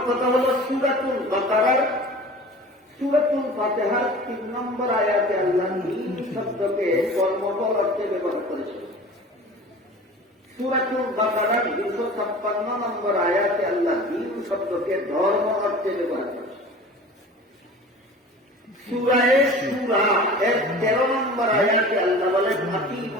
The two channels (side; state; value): both; normal; correlation 0.40